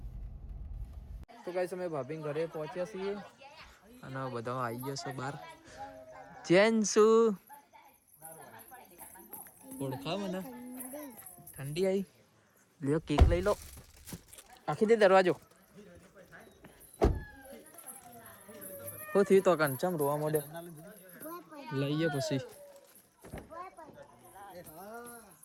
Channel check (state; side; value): identical; both; correlation 1.00